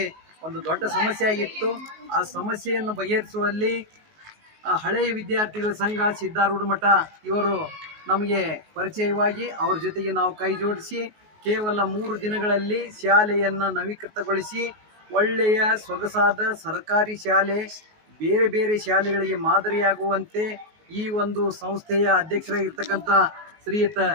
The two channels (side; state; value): left; late; 19 ms